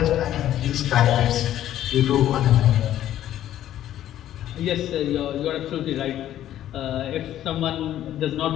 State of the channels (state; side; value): quieter; right; 12.2 dB